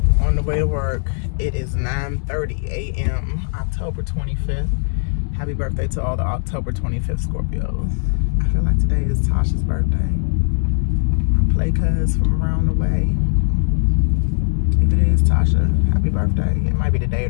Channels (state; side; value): silent; right; digital silence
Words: on the way to work. It is 9:30 a.m. October 25th. Happy birthday to all the October 25th Scorpios. I feel like today is Tasha's birthday. I play cuz from around the way. If it is Tasha, happy birthday. It might be today or